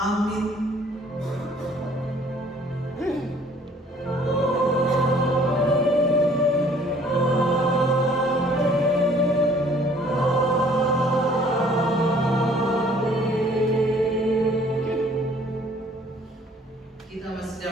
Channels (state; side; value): normal; both; correlation 0.57